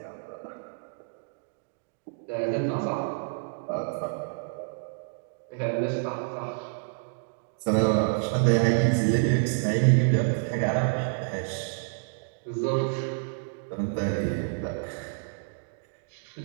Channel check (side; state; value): left; silent; digital silence